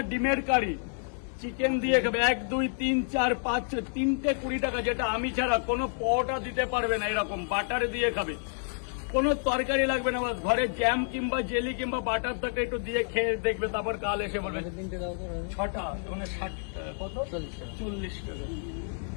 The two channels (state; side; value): silent; right; 58 dB below the other